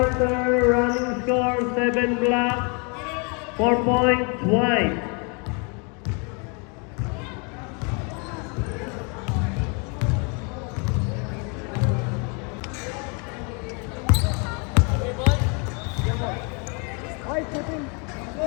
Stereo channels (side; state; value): right; quieter; 34.7 dB